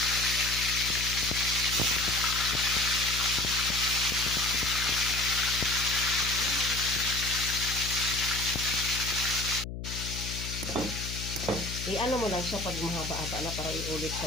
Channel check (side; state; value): left; noise; hum, 7 dB below the sound